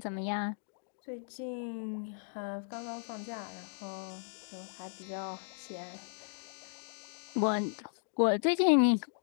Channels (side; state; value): right; silent; digital silence